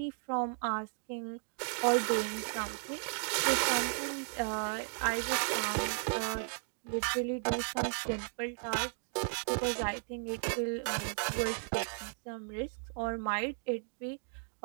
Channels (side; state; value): left; silent; 54 dB below the other